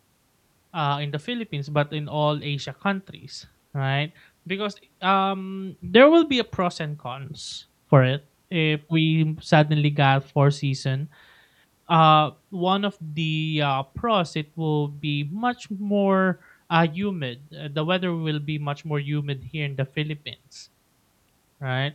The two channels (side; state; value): both; identical; correlation 1.00